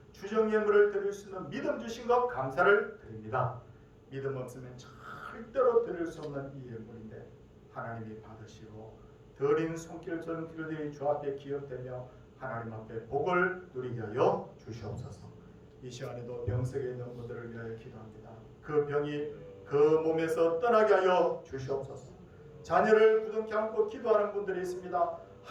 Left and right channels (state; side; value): identical; both; correlation 1.00